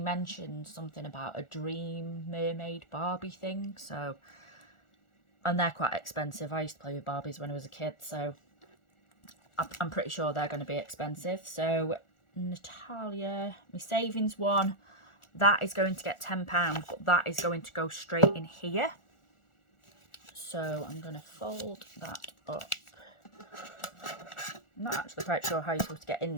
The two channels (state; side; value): late; right; 1.4 ms